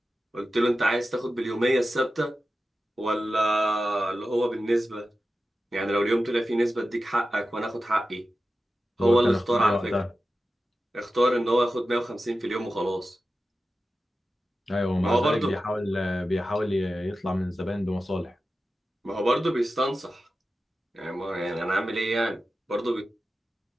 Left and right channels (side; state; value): both; normal; correlation 0.93